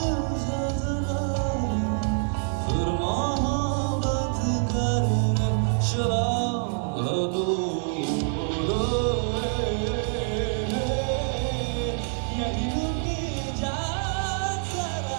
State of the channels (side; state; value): left; silent; 61 dB below the other